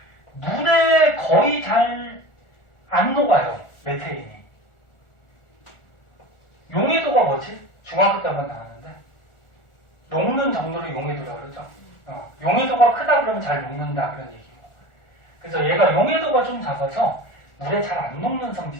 물에 거의 잘 안 녹아요. 메테인이. 용해도가 뭐지? 중학교 때 한번 나왔는데. 녹는 정도로 용해도라고 그러죠. 용해도가 크다 그러면 잘 녹는다. 그런 얘기고. 그래서 얘가 용해도가 좀 작아서 물에 잘 안 녹는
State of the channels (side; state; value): right; late; 1.4 ms